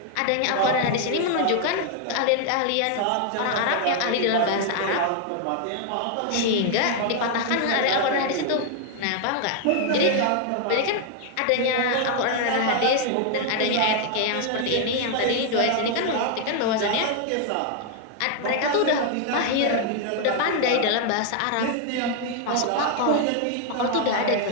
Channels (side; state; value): both; different; correlation 0.00